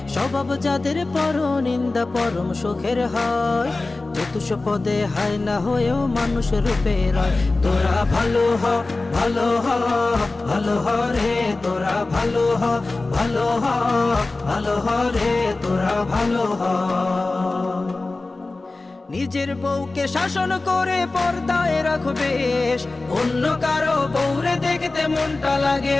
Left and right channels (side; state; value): right; quieter; 3.3 dB